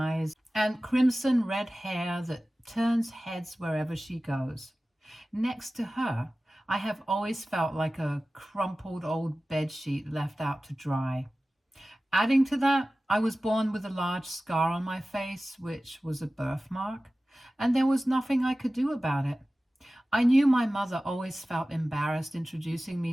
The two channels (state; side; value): normal; both; correlation 0.96